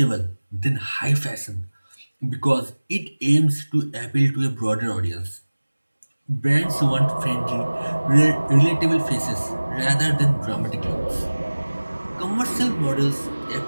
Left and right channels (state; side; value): inverted; both; correlation -1.00